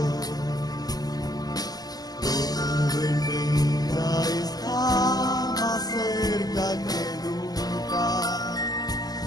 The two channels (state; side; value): late; right; 0.19 ms